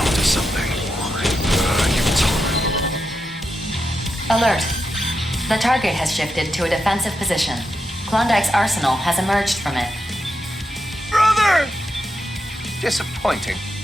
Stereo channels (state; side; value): normal; both; correlation 0.85